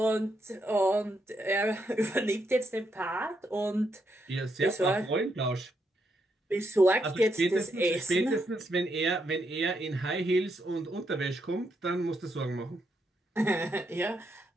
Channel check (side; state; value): both; normal; correlation 0.79